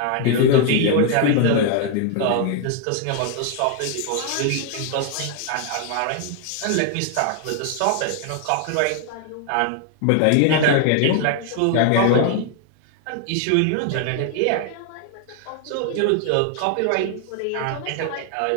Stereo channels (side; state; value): both; different; correlation 0.00